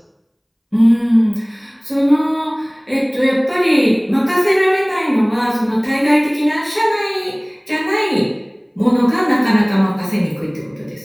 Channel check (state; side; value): identical; both; correlation 1.00